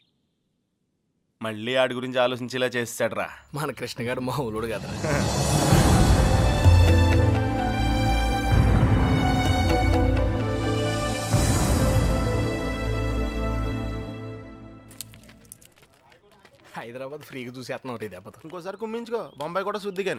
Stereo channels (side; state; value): both; identical; correlation 1.00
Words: మళ్ళీ ఆడి గురించి ఆలోచించేలా చేస్తాడ్రా మన కృష్ణ గారు మామూలుడు కదా. హైదరాబాద్ ఫ్రీగా చూసేస్తున్నాం ఒకటి దెబ్బతో. ఇంకోసారి కుమ్మించుకో, బొంబాయి కూడా శుద్ధి